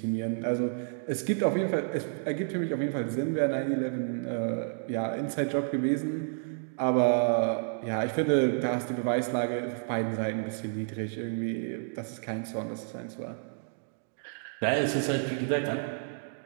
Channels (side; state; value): left; silent; digital silence